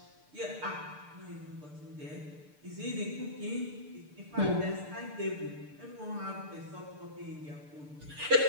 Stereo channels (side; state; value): left; late; 6.7 ms